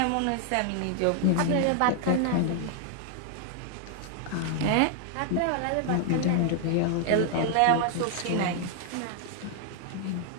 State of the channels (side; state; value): both; different; correlation 0.00